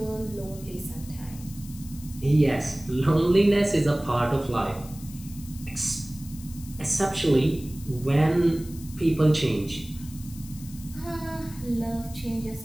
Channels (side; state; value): left; noise; hiss, 18 dB below the sound